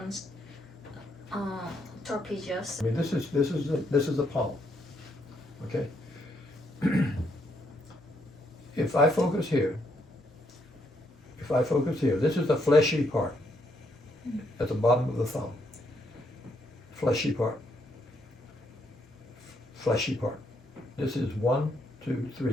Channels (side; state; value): both; normal; correlation 0.74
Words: trapezius. I mean, this is the palm. Okay. If I focus here, this is the fleshy part at the bottom of the thumb. Fleshy part. Fleshy part. This is 1, 2,